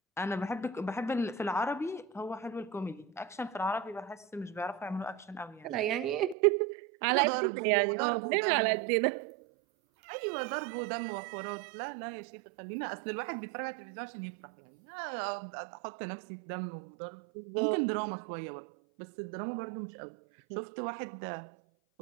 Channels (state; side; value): drops out; left; at 6.4 s